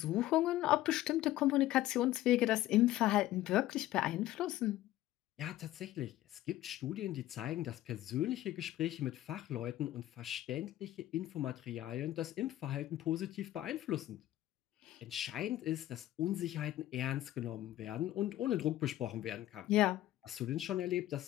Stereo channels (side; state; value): right; quieter; 14.6 dB